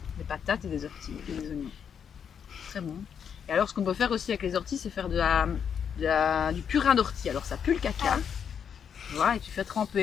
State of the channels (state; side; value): quieter; right; 7.6 dB